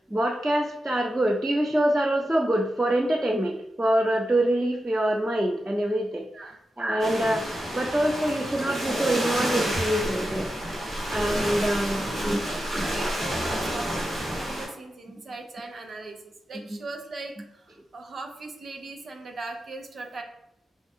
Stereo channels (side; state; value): both; normal; correlation 0.90